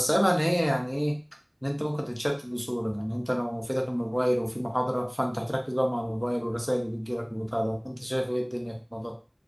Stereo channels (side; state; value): both; identical; correlation 1.00